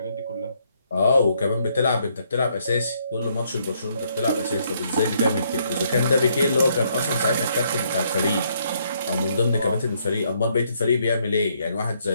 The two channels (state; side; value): inverted; both; correlation -0.71